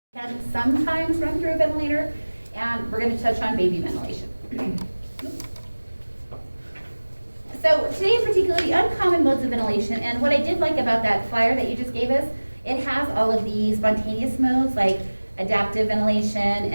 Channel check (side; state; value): both; inverted; correlation -1.00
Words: can sometimes run through a ventilator, and we're going to touch on baby ventilation. So today in particular, the uncommon modes of ventilation, and what I did like about that flyer that you just gave us, it has all of the spontaneous modes like adaptive ventilation